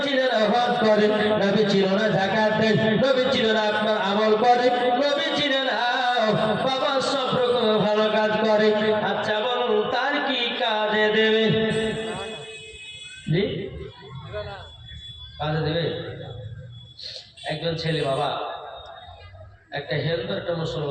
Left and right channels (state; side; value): identical; both; correlation 1.00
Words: চিনে না হজ করে, নবী চিনে না যাকাত দেয়, নবী চিনে না আপনার আমল করে, নবী চিনে না বাবা সব রকম ভালো কাজ করে। আচ্ছা বলুন, তার কি কাজে দেবে? জি কাজে দেবে? একজন ছেলে বাবা, একটা হিন্দু একটা